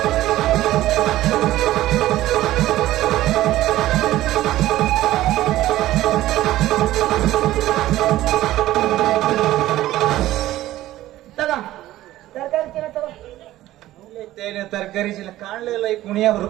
ತಗೋ ತರಕಾರಿ ಚೀಲ ತಗೋ. ತರಕಾರಿ ಚೀಲ ಕಾಣ್ಲಿಲ್ಲ ಈ ಕುಣಿಯ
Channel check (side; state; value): left; quieter; 15.0 dB